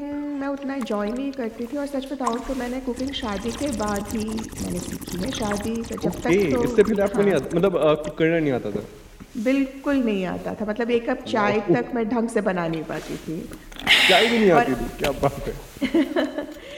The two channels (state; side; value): identical; both; correlation 1.00